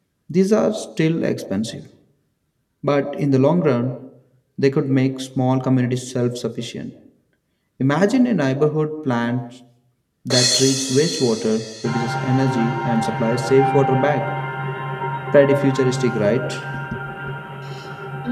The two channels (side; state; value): both; identical; correlation 1.00